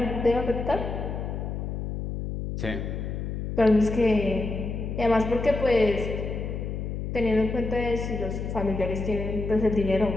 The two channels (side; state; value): left; noise; hum, 4 dB below the sound